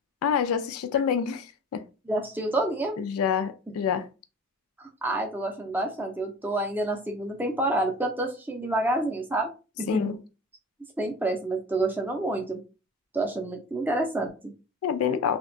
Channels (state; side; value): normal; both; correlation 0.37